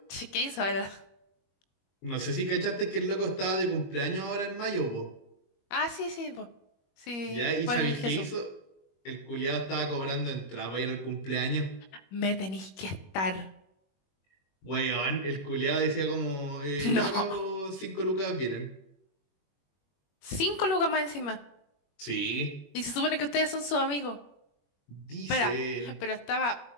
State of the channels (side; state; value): right; late; 21 ms